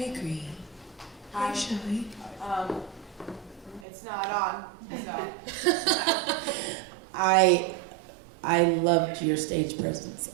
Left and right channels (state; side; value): drops out; left; at 3.9 s